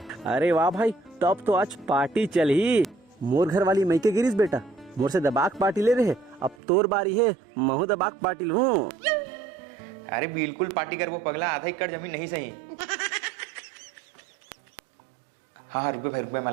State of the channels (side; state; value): left; drops out; at 6.6 s